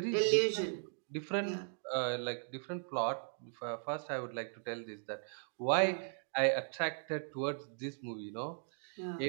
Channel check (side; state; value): left; silent; digital silence